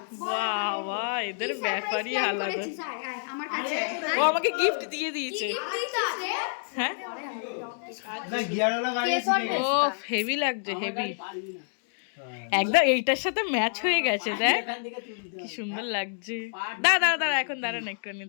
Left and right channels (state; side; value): silent; right; digital silence